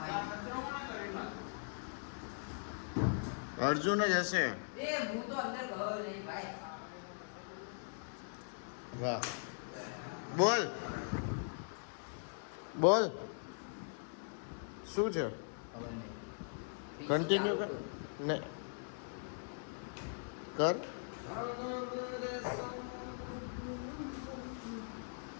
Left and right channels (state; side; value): silent; right; 51 dB below the other